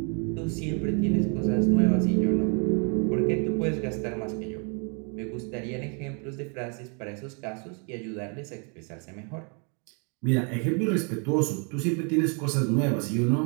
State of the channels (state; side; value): quieter; left; 37.0 dB